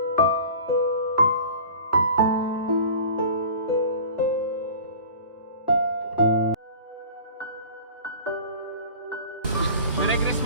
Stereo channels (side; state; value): both; inverted; correlation -0.40